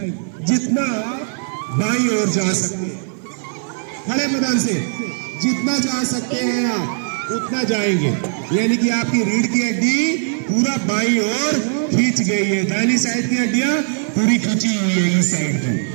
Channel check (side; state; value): left; silent; 58 dB below the other